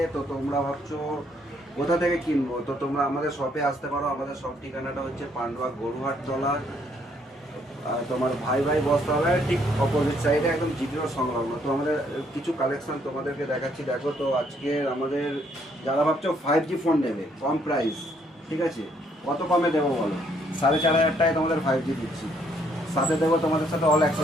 তো তোমরা ভাবছো কোথা থেকে কিনবো, তো তোমরা আমাদের শপে আসতে পারো। আমাদের শপ ঠিকানাটা হচ্ছে পান্ডুয়া গরুহাট তলা, তোমার ভাই ভাই বসতে হবে ঠিক অপোজিট সাইডে, একদম জিপিওর সংলগ্ন। তো আমাদের কিছু কালেকশন তোমাদেরকে দেখাচ্ছি, দেখো। তো আজকে আমাদের যারা ভাবছো 5G ফোন নেবে কম প্রাইস, ঠিক আছে, কত কমে দেবো বলো? 4,500 টাকায় তোমাদের 5G দিচ্ছি, সাথে দেবো তোমাদের সাথে অল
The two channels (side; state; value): both; normal; correlation 0.68